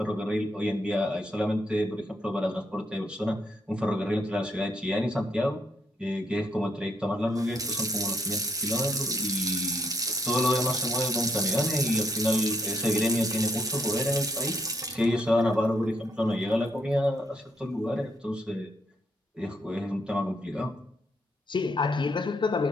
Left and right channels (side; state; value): both; normal; correlation 0.74